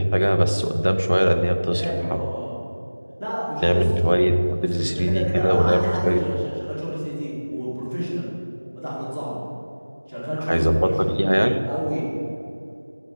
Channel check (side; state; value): both; inverted; correlation -1.00